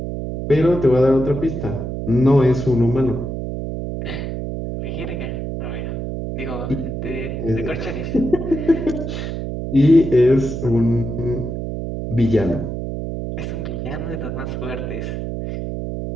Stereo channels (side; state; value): right; noise; hum, 5 dB below the sound